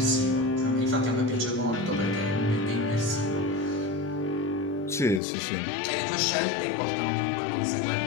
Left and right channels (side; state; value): right; drops out; at 5.2 s